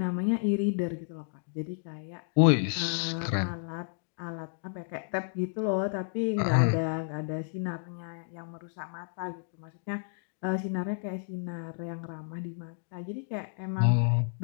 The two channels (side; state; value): right; silent; digital silence